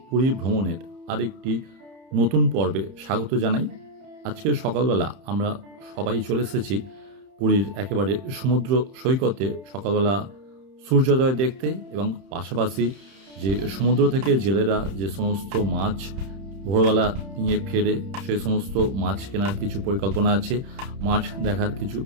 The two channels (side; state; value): left; late; 30 ms